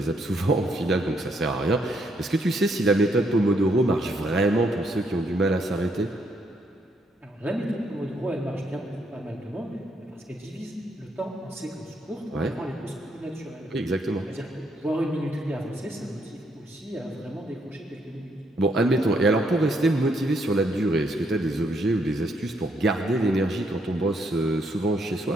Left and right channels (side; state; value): both; normal; correlation 0.73